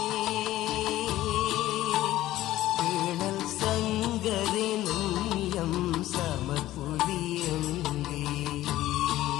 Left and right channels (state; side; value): quieter; right; 15.1 dB